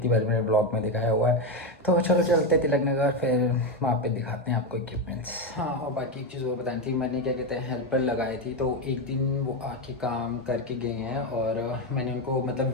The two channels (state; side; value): normal; both; correlation 0.10